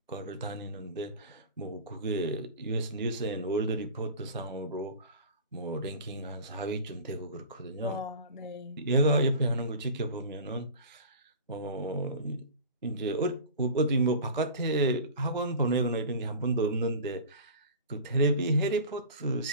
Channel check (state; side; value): inverted; both; correlation -0.36